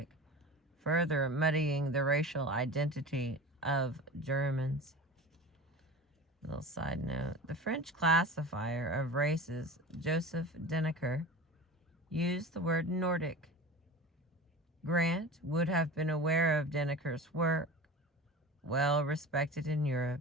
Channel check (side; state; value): both; normal; correlation 0.33